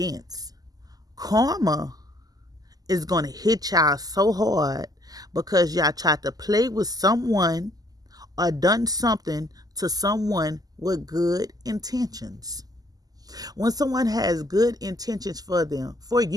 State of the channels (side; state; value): left; late; 0.18 ms